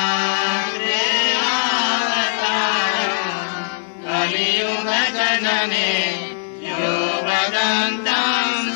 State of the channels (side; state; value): right; silent; 66 dB below the other